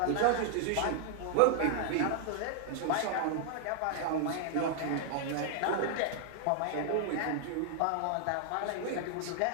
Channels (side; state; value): both; different; correlation 0.00